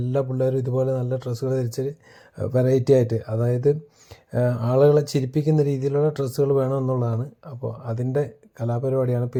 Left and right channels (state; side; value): identical; both; correlation 1.00